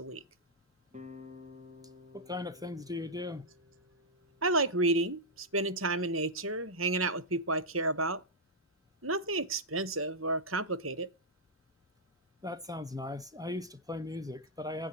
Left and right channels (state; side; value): normal; both; correlation -0.08